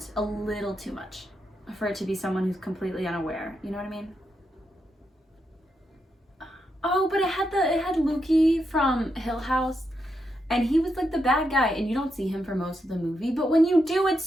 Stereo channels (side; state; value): both; normal; correlation 0.83